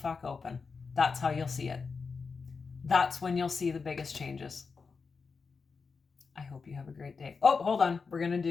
open. That's how you'll see it. That's when you'll see the biggest changes. I hope you have a great day. Oh, hold on. We're going to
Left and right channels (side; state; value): right; quieter; 5.0 dB